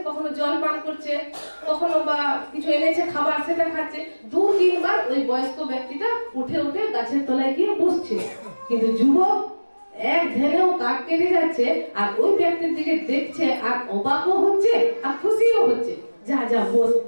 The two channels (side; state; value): both; inverted; correlation -1.00